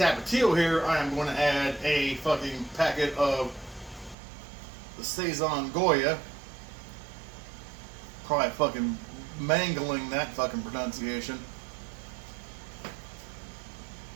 here, I am going to add a fucking packet of the Saison Goya. Probably fucking mangling that fucking pronunciation.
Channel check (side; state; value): left; drops out; at 4.2 s